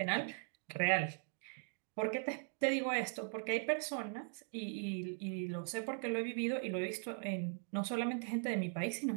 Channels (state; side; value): silent; left; 51 dB below the other